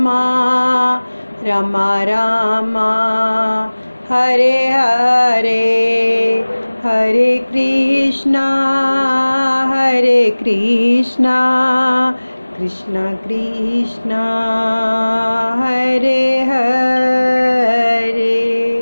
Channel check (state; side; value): inverted; both; correlation -1.00